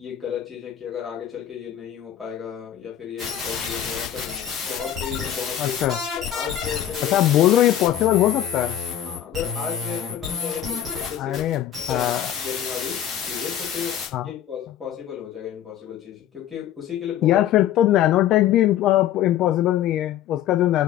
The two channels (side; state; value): right; quieter; 11.0 dB